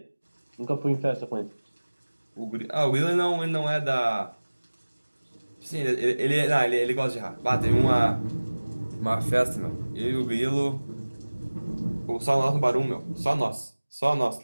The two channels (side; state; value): both; inverted; correlation -1.00